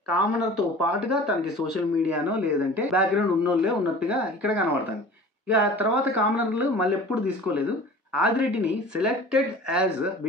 కామనర్తో పాటుగా తనకి సోషల్ మీడియానో లేదంటే బ్యాక్గ్రౌండ్ ఉన్నోళ్ళే ఉన్నట్టుగా ఇక్కడ కనబడుతుంది. ఇక తర్వాత కామనర్లు మళ్ళీ ఎప్పుడు తీసుకోలేదు. ఆదిరెడ్డిని selected as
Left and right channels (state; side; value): normal; both; correlation 0.42